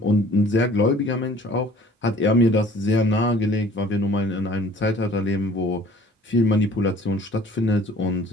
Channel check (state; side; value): normal; both; correlation 0.52